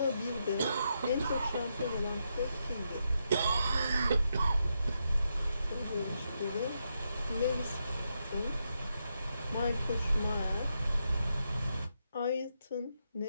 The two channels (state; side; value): inverted; both; correlation -0.82